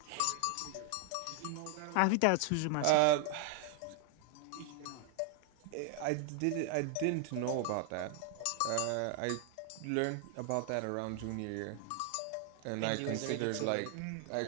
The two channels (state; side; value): different; both; correlation 0.00